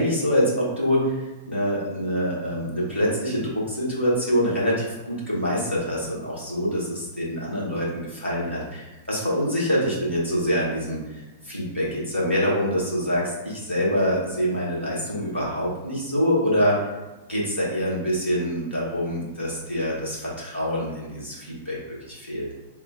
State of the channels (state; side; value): inverted; both; correlation -0.57